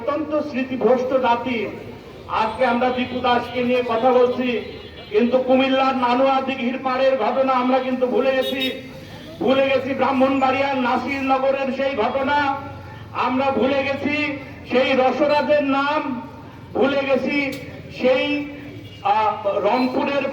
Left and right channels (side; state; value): both; identical; correlation 1.00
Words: স্মৃতিভ্রষ্ট জাতি। আজকে আমরা দীপু দাসকে নিয়ে কথা বলছি, কিন্তু কুমিল্লার নানুয়া দিঘির পাড়ের ঘটনা আমরা কিন্তু ভুলে গেছি ব্রাহ্মণবাড়িয়ার নাসিরনগরের সেই ঘটনা, আমরা ভুলে গেছি সেই রসরাজের নাম, ভুলে গেছি সেই রংপুরের